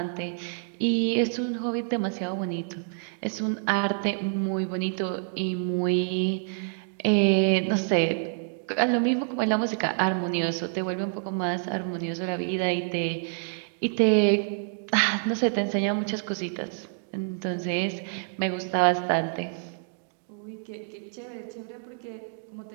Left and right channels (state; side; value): silent; left; digital silence